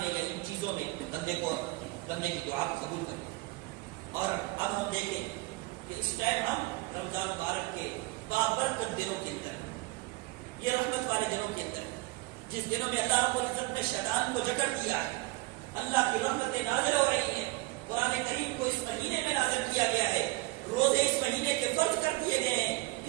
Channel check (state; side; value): quieter; left; 21.4 dB